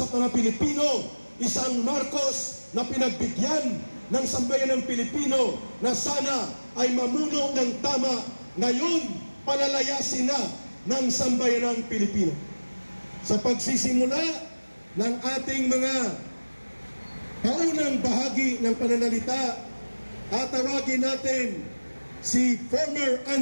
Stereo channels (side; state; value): both; inverted; correlation -1.00